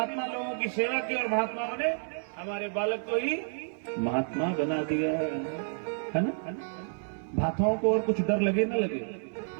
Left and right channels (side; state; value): left; silent; digital silence